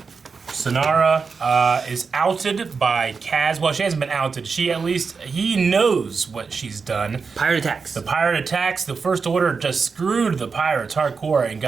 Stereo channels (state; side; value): quieter; left; 5.1 dB